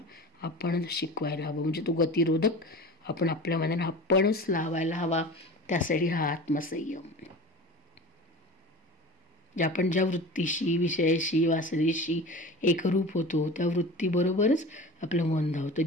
आपणच शिकवायला हवं. म्हणजे तो गतिरोधक आपण आपल्या मनाला आपणच लावायला हवा. त्यासाठी हा आत्मसंयम. आपण ज्या वृत्तीशी, विषयाशी, वासनेशी एकरूप होतो त्या वृत्तीबरोबरच आपलं मन धावतं.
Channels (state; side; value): normal; both; correlation 0.35